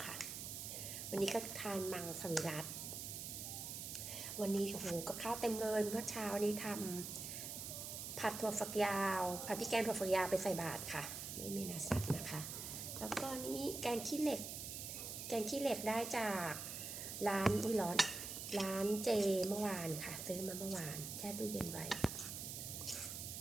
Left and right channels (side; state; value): right; noise; hiss, 6 dB below the sound